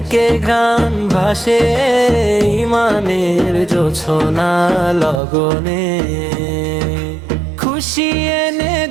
ঘ্রাণ ভাসে। ইমানের জোছনা লগনে খুশি এনে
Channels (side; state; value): left; drops out; at 5.2 s